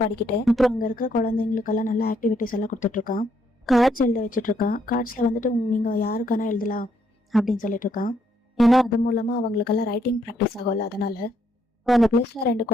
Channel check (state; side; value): normal; both; correlation 0.73